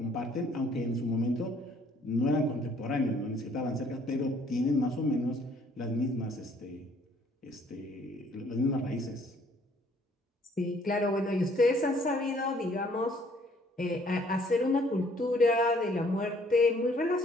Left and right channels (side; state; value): both; normal; correlation 0.61